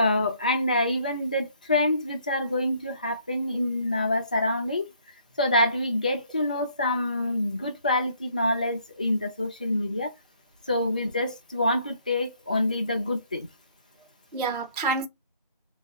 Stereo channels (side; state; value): both; inverted; correlation -0.64